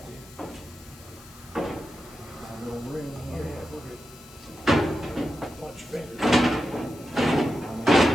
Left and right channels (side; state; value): left; noise; hiss, 21 dB below the sound